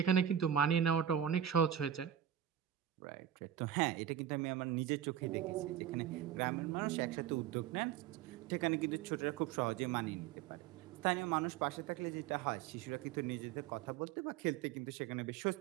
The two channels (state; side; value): quieter; left; 9.8 dB